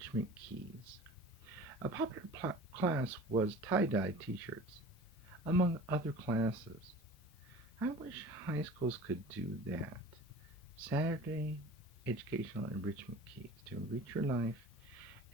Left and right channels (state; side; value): normal; both; correlation 0.41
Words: Keys. A popular class was tie-dye t-shirts, among other classes. I wish high schools could do that. Saturday Educational Enrichment Keys to enrich your life